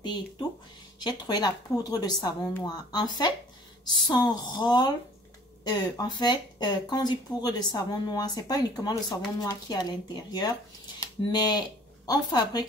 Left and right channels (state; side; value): normal; both; correlation 0.52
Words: et tout. J'ai trouvé la poudre de savon noir. En fait, son rôle, quand on dit poudre de savon noir, c'est pas uniquement le savon noir qui est à l'intérieur, mais on